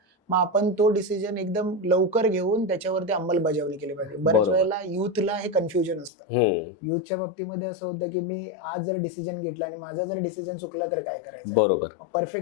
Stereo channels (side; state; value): right; drops out; at 6.1 s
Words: मग आपण तो डिसिजन एकदम लवकर घेऊन त्याच्यावरती अंमलबजावणी केली पाहिजे. बऱ्याच वेळेला युथला हे कन्फ्युजन असतं. युथच्या बाबतीमध्ये असं होतं की मी आज जर डिसिजन घेतला आणि माझा जर डिसिजन चुकला तर काय करायचं. बरोबर.